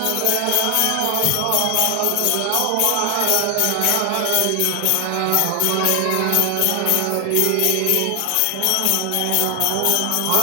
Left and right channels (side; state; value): both; different; correlation 0.00